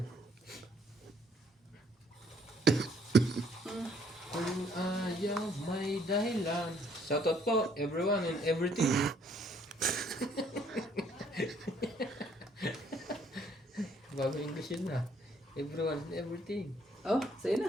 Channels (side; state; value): both; normal; correlation 0.64